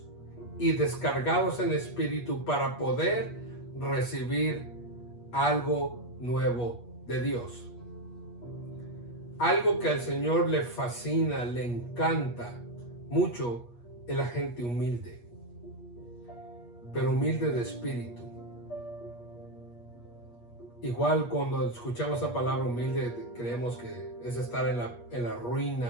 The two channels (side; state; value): right; late; 8.4 ms